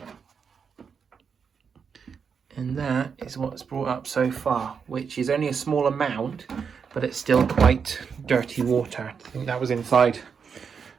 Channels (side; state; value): left; quieter; 6.3 dB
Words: And that is what's brought up so far, which is only a small amount, but it's still quite dirty water. I think that was inside